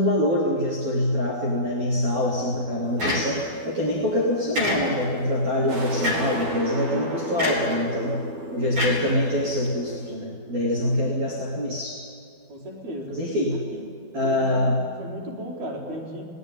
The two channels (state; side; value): late; left; 12 ms